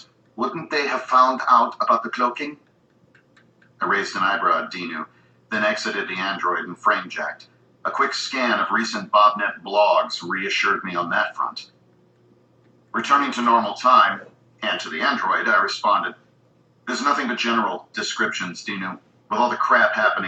wouldn't they have found out about the cloaking? I raised an eyebrow at Dinu, then exited the android and frame-jacked. A quick scan of recent BobNet blogs reassured me on that front. Returning to normal time, and to the android, I responded, "There's nothing but general descriptions, Dinu. With all the crap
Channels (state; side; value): identical; both; correlation 1.00